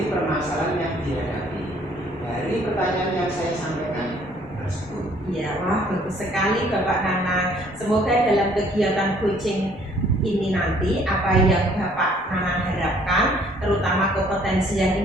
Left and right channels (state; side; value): normal; both; correlation 0.60